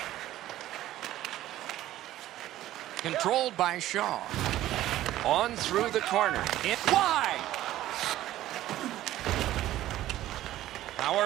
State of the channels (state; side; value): quieter; left; 14.2 dB